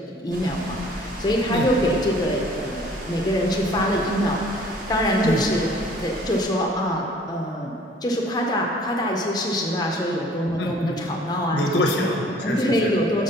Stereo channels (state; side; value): normal; both; correlation 0.54